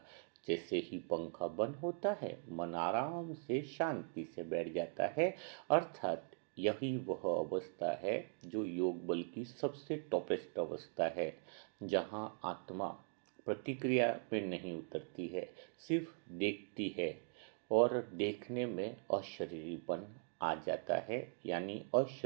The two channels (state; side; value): silent; left; 50 dB below the other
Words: जैसे ही पंखा बंद होता है, मन आराम से शांति से बैठ जाता है। अर्थात यही वह अवस्था है जो योग बल की सबसे टॉपेस्ट अवस्था है, जहाँ आत्मा प्रतिक्रिया पे नहीं उतरती है, सिर्फ देखती है और देखने में अशरीरीपन आ जाता है। यानी